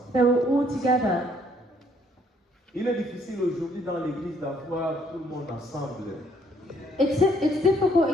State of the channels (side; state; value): both; normal; correlation 0.66